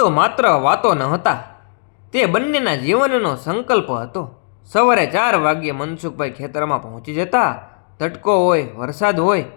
માત્ર વાતો ન હતા, તે બંનેના જીવનનો સંકલ્પ હતો. સવારે 4 વાગ્યે મનસુખભાઈ ખેતરમાં પહોંચી જતા. તડકો હોય, વરસાદ હોય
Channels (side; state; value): right; silent; digital silence